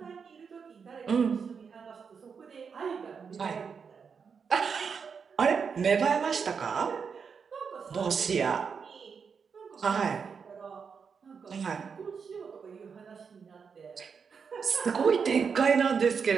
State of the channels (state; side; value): quieter; left; 6.1 dB